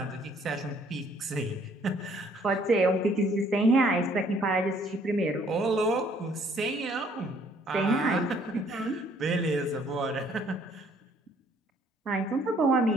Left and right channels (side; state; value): both; normal; correlation 0.62